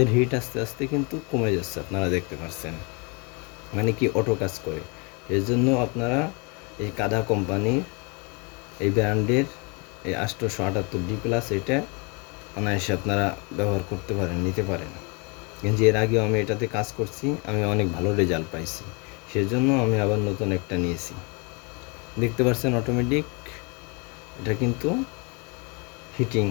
হিট আস্তে আস্তে কিন্তু কমে যাচ্ছে, আপনারা দেখতে পাচ্ছেন। মানে কি অটো কাজ করে। এর জন্য আপনারা এই কাদা কোম্পানির এই ব্র্যান্ডের এই 878D+, এটা অনায়াসে আপনারা ব্যবহার করতে পারেন, নিতে পারেন। কিন্তু এর আগেও আমি এটাতে কাজ করছি, আমি অনেক ভালো রেজাল্ট পাইছি, সেজন্য আমি আবার নতুন একটা নিয়েছি। দেখতে পাচ্ছেন অটোমেটিক এটা কিন্তু হিটিং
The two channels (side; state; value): right; quieter; 31.5 dB